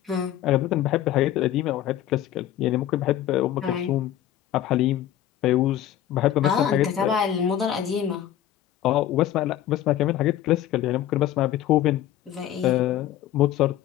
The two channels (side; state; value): right; quieter; 11.8 dB